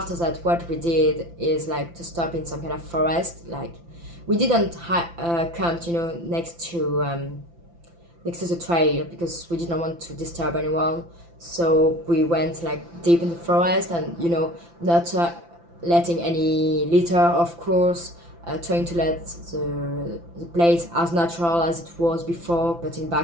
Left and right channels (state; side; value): late; left; 5.9 ms